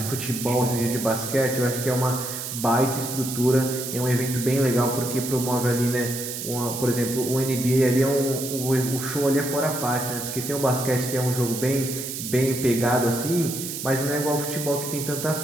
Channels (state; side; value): noise; right; hiss, 6 dB below the sound